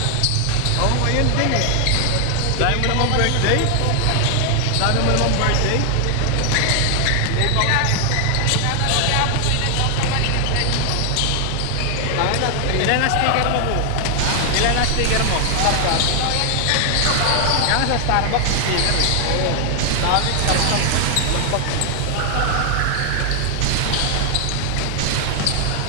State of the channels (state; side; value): different; both; correlation 0.00